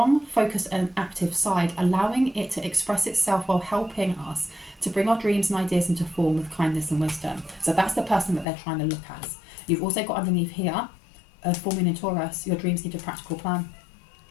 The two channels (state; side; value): drops out; right; at 8.5 s